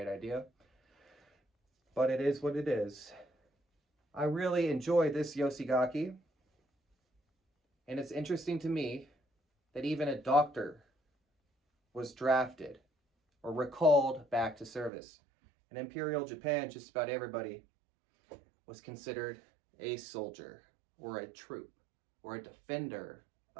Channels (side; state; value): left; drops out; at 14.9 s